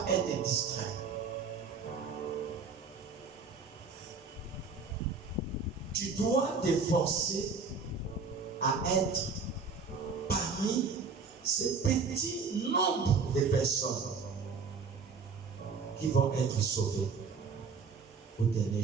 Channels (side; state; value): left; quieter; 5.0 dB